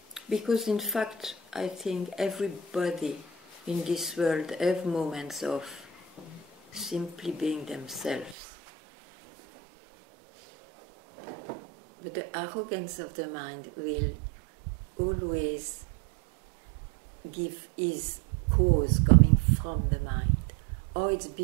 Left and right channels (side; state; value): left; drops out; at 8.3 s